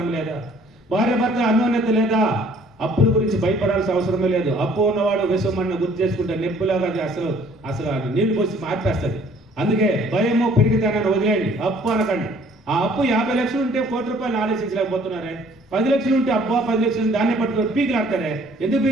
లేదా, భార్య భర్త అన్యోన్యత లేదా, అప్పుల గురించి భయపడాల్సిన అవసరమే లేదు. అప్పు ఉన్నవాడు విషమన్న గుర్తు చేసుకుంటే నెప్పులాగా అసలు నీళ్లు పోసి మార్పేస్తుంది. అందుకే భయము పెరిగితేనని వదిలేయండి, అప్పు అనకండి. ఆ అప్పు 50 లక్షలు ఉంటే ₹1 ఆలోచించలేకపోతున్నారే. 10 లక్షలు ఉంటే అబ్బా 10 లక్షలు దాన్ని పట్టుకొని పీకులాడతారే. ఎందుకు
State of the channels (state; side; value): normal; both; correlation 0.57